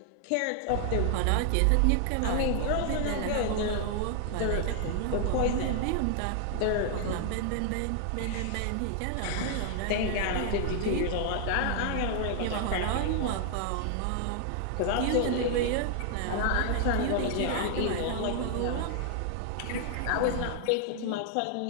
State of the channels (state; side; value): different; both; correlation 0.00